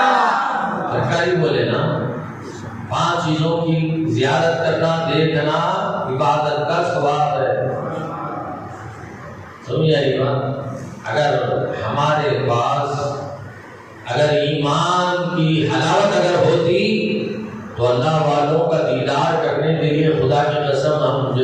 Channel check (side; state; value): both; identical; correlation 1.00